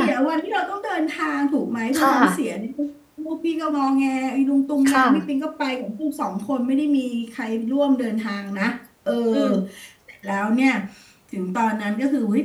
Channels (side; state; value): both; identical; correlation 1.00